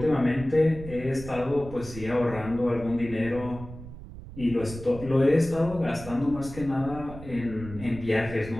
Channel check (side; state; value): right; noise; rumble, 13 dB below the sound